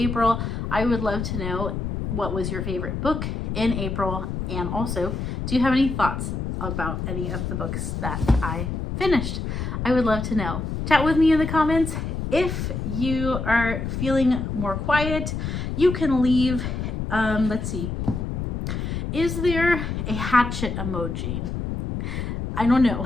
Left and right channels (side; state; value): left; noise; rumble, 3 dB below the sound